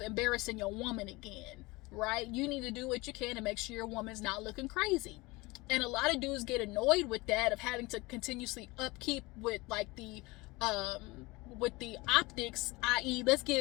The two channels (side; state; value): right; quieter; 22.9 dB